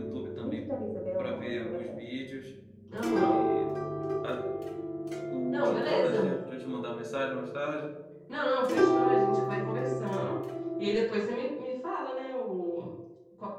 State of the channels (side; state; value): both; identical; correlation 1.00